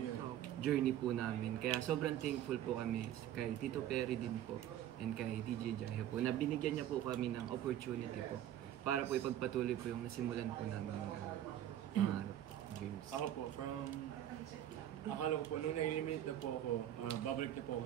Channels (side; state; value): left; quieter; 11.7 dB